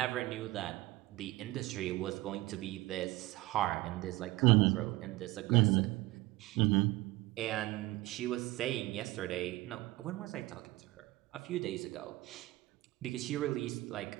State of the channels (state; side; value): quieter; left; 19.4 dB